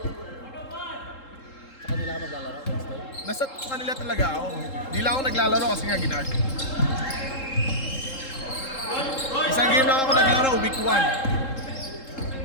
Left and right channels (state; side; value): late; right; 3.7 ms